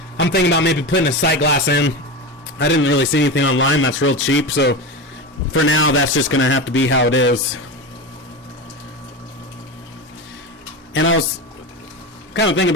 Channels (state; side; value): normal; both; correlation 0.22